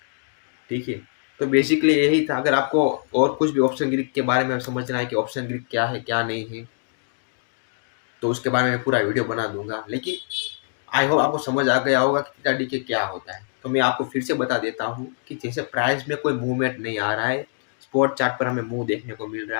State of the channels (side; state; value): right; silent; digital silence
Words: ठीक है। तो बेसिकली यही था। अगर आपको और कुछ भी ऑप्शन ग्रीक के बारे में समझना है कि ऑप्शन ग्रीक क्या है क्या नहीं है, तो उसके बारे में पूरा वीडियो बना दूंगा। लेकिन आई होप आपको समझ आ गया होगा कि थीटा डीके क्या होता है। तो मैं आपको फिर से बता देता हूँ कि जैसे प्राइस में कोई मूवमेंट नहीं आ रहा है, स्पॉट चार्ट पर हमें मूव देखने को मिल